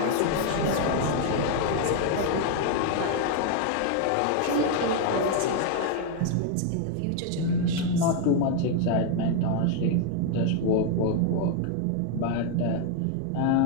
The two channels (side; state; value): both; different; correlation 0.00